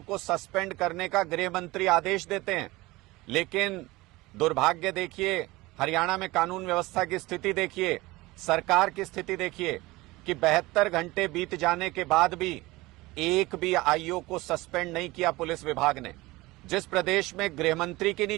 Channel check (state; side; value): quieter; left; 20.6 dB